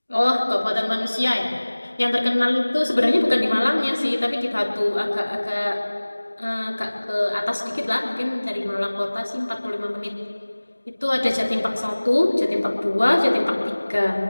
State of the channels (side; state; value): both; inverted; correlation -1.00